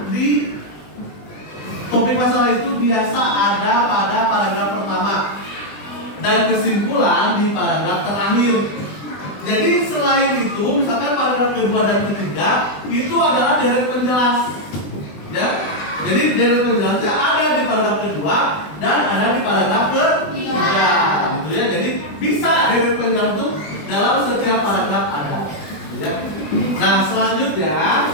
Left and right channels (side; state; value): right; late; 20 ms